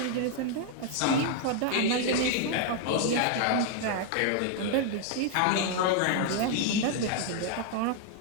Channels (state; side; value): different; both; correlation 0.00